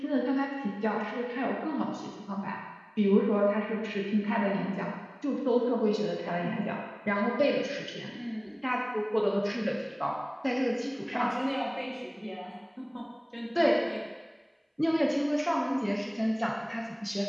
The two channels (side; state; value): both; identical; correlation 1.00